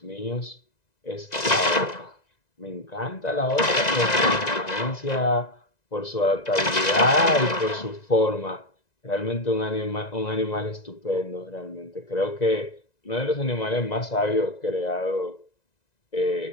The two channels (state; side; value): late; right; 1.9 ms